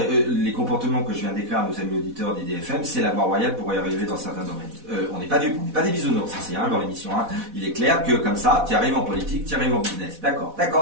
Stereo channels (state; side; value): late; left; 4.1 ms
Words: les comportements que je viens d'écrire à nos amis auditeurs d'IDFM, c'est la voie royale pour y arriver dans certains domaines. On n'est pas dupes, on n'est pas des bisounours ici, hein, dans l'émission. Hein. Il est clair que comme ça, tu arrives en politique, tu arrives en business. D'accord.